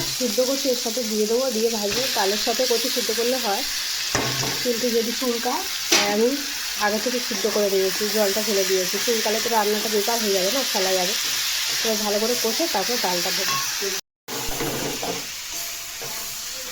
সিদ্ধ করছি এর সাথে দিয়ে দেবো, দিয়ে ভাজবো। ডালের সাথে কচু সিদ্ধ করলে হয়, কিন্তু যদি চুলকায় তাই আমি আগে থেকে সিদ্ধ করে দিয়েছি, জলটা ফেলে দিয়েছি। চুলকালে তো রান্নাটা বেকার হয়ে যাবে না, ফেলা যাবে। এবার ভালো করে কষে তারপর ডালটা দেবো।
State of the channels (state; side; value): identical; both; correlation 1.00